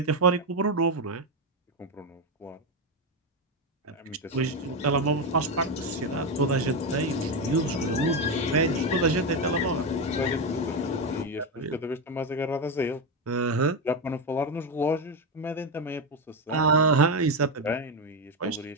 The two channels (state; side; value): normal; both; correlation 0.10